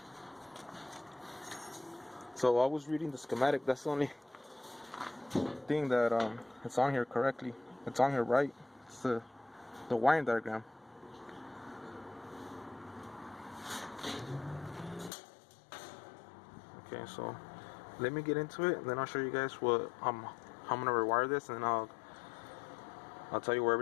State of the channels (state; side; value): drops out; right; at 15.1 s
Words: So I was reading the schematic. That's the only thing that it's on here correctly. It's on here right. It's the wiring diagram. Okay, so let me get into it, and then I'll show you guys how I'm gonna rewire this, and then I'll tell you where